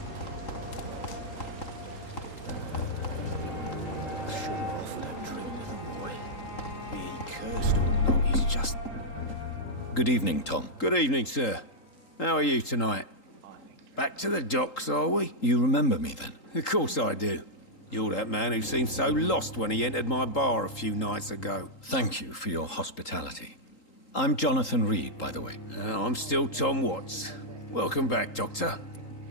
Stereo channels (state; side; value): late; right; 3.8 ms